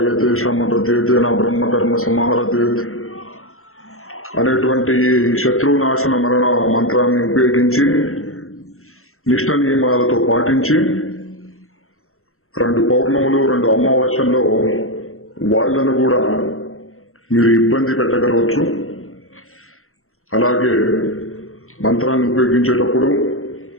శమతేతే నా బ్రహ్మకర్మ సమారతే అనేటువంటి శత్రు నాశన మరణ మంత్రాన్ని ఉపయోగించి నిష్ఠ నియమాలతో పాటించి 2 పౌర్ణములు 2 అమావాస్యల్లో వాళ్లను కూడా మీరు ఇబ్బంది పెట్టగలవచ్చు. అలాగే మంత్రాన్ని ఉపయోగించేటప్పుడు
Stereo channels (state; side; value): late; right; 0.62 ms